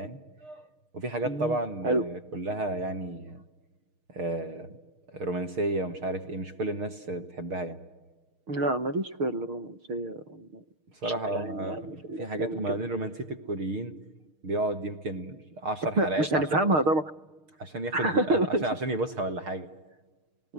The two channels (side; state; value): left; late; 6.5 ms